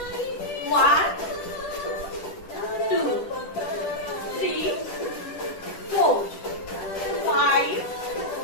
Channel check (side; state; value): right; late; 10 ms